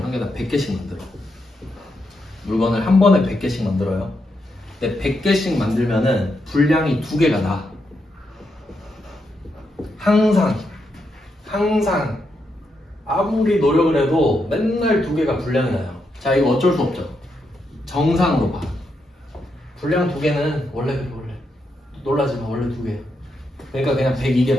한 개당 100개씩 만들어. 물건을 한 번에 100개씩 만들어요. 근데 100개씩 만들면은 분량이 2개가 나. 항상 아무리 노력을 해도 맨날 2개가 분량이 나요. 자, 이거 어쩔 수 없죠. 정상으로 봐. 분량 2개는 원래 그래. 놀라지 마. 원래 2개. 그러니까 그냥 102개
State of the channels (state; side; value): normal; both; correlation 0.82